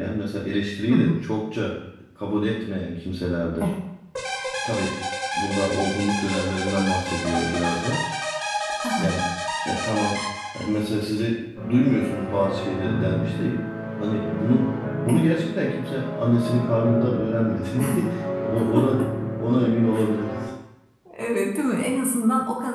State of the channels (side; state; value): both; identical; correlation 1.00